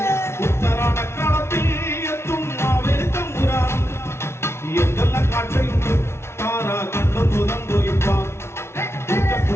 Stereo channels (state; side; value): late; right; 0.12 ms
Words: ഉത്തരാടക്കളത്തിൽ എത്തും മാവേലി തമ്പുരാനും എന്തെല്ലാം കാഴ്ചയുണ്ട് താര കണ്ടു തുറന്നു ഇപ്പാൻ